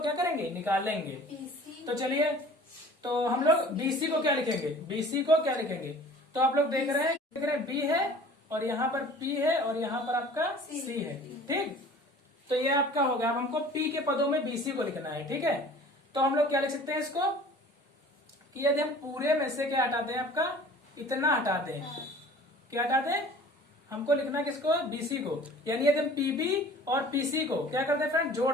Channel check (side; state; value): both; normal; correlation 0.46